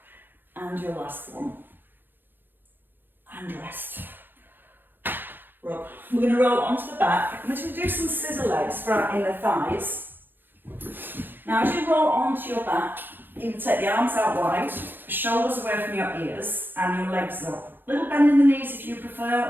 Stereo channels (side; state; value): left; late; 0.095 ms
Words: And your last one. And rest. Rub. We're going to roll onto the back. I'm going to do some scissor legs for our inner thighs. Now as you roll onto your back, you can take the arms out wide, shoulders away from your ears, and your legs up. Little bend in the knees if you prefer,